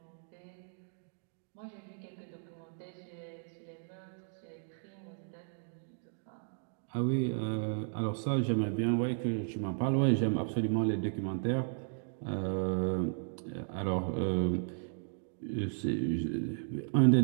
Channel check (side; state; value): left; silent; digital silence